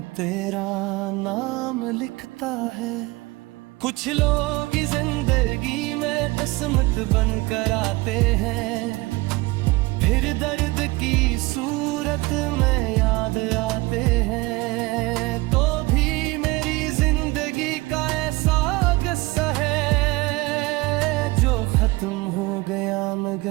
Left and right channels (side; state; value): left; quieter; 22.2 dB